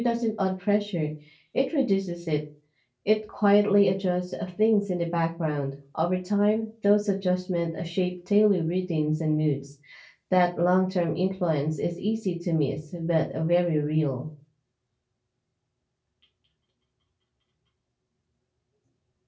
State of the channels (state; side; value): identical; both; correlation 1.00